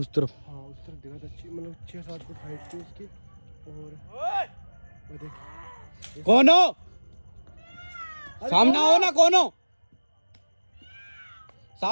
तरफ? हाँ उस तरफ दिखा था, मतलब 6-7 फुट हाइट थी उसकी। और वो देख, कौन हो, सामने आओ ना, कौन हो,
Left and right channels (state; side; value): inverted; both; correlation -1.00